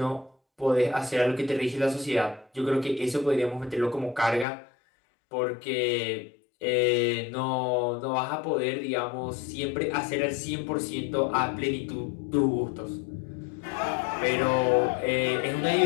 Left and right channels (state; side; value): drops out; right; at 4.5 s